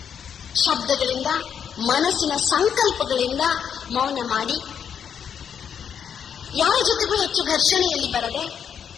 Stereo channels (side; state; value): right; quieter; 7.9 dB